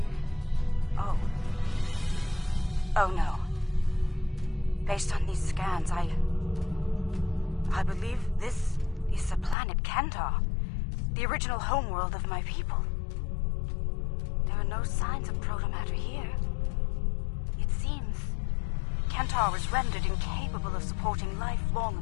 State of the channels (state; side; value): drops out; right; at 9.6 s